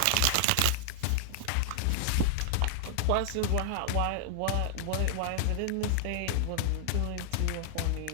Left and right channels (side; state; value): both; different; correlation 0.00